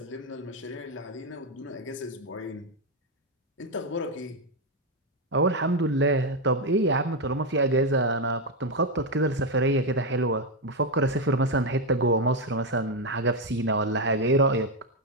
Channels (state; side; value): normal; both; correlation 0.05